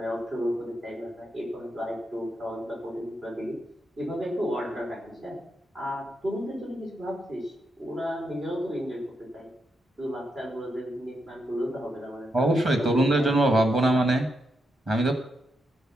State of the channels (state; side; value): normal; both; correlation 0.83